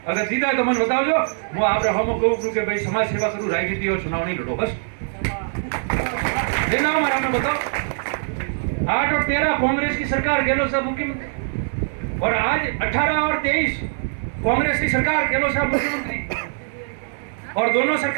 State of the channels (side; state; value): left; silent; digital silence